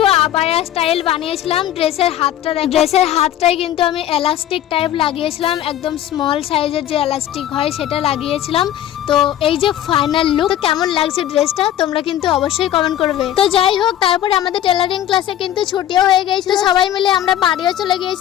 আবায়া স্টাইল বানিয়েছিলাম। ড্রেসের হাতটাই কিন্তু আমি এলাস্টিক টাইপ লাগিয়েছিলাম, একদম স্মল সাইজের যে এলাস্টিক হয় সেটা লাগিয়েছিলাম। তো এই যে ফাইনাল লুক, তো কেমন লাগছে ড্রেসটা তোমরা কিন্তু অবশ্যই কমেন্ট করবে। তো যাই হোক, তারপরে আমাদের টেলারিং ক্লাসে কিন্তু ছুটিও হয়ে গিয়েছিল, সবাই মিলে আমরা বাড়িও চলে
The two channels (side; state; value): right; quieter; 11.8 dB